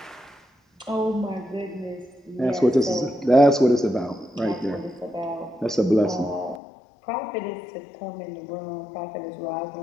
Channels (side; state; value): right; drops out; at 6.6 s